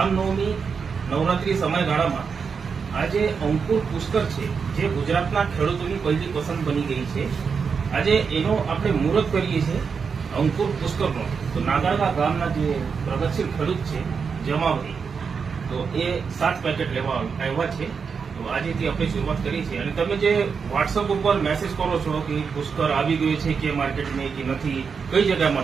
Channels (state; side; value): quieter; left; 5.8 dB